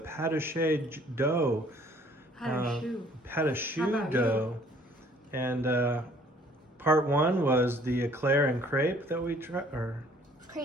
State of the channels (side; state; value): both; normal; correlation 0.58